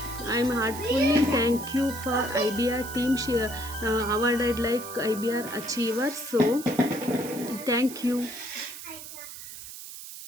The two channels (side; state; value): right; noise; hiss, 12 dB below the sound